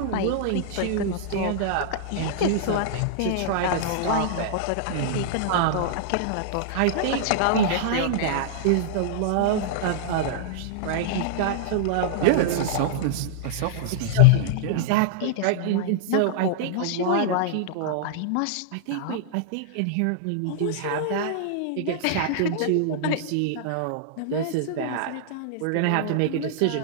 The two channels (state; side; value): different; both; correlation -0.01